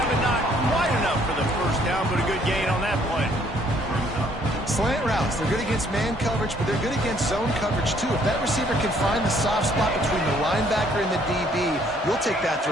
and not quite enough for the first down, but a good gain on that play. Slant routes, they're good against man coverage, but they're good against zone coverage too. If that receiver can find the soft spot between the linebacker and the DB, you'll take that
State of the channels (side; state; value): both; normal; correlation 0.64